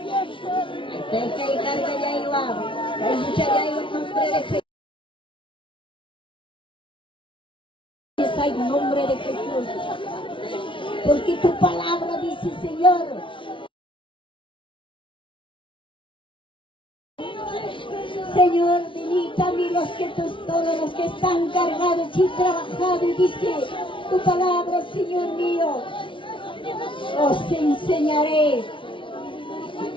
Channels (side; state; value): right; late; 0.25 ms